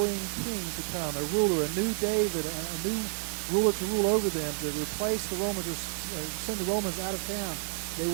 king to come, a ruler, a new David, a new ruler to rule over them, to replace the Romans or send the Romans out of town. They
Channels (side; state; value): left; silent; 58 dB below the other